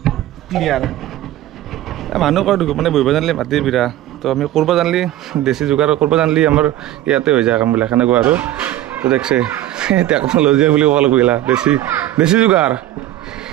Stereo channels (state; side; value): quieter; left; 14.0 dB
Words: ক্লিয়াৰ মানুহ কয় মানে বহিব জানিলে মাটি বিৰা তো আমি কৰিব জানিলে দেশী যোগাৰ কৰিব জানিলে আমাৰ ইয়াতে হৈ যায় কামবিলাক সেনেকুৱা আৰু তো দেখছে টেকন'লজি বুলি ক'ব লাগিব দেশী যোগাৰ